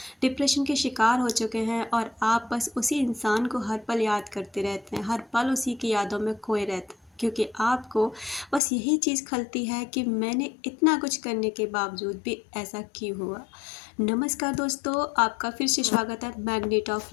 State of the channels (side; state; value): right; drops out; at 8.6 s